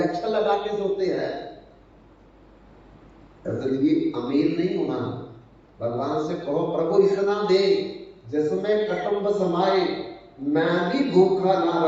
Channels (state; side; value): identical; both; correlation 1.00